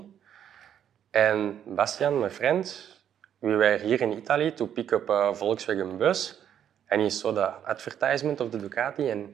And Bastian, my friend, we were here in Italy to pick up a Volkswagen bus, and he saw the advertisement of the Ducati and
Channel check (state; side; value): quieter; left; 9.5 dB